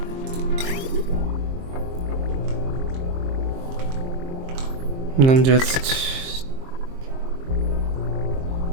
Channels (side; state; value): left; late; 23 ms